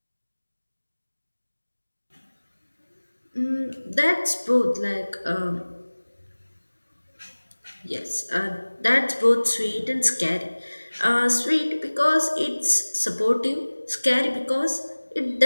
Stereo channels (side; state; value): both; inverted; correlation -1.00